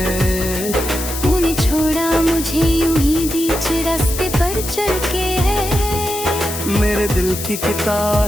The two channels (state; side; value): noise; left; hiss, 7 dB below the sound